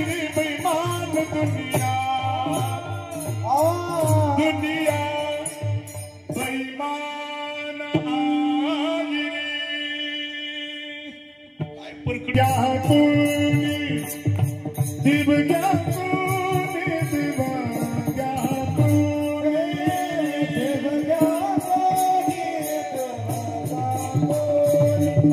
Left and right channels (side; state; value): both; identical; correlation 1.00